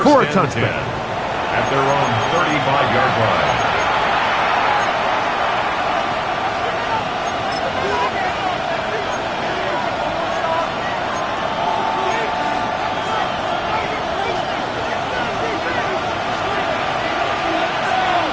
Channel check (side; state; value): both; identical; correlation 1.00